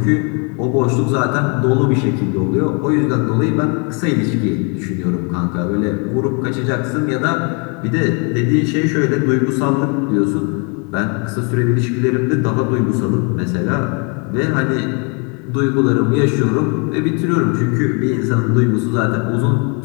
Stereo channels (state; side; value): quieter; right; 34.6 dB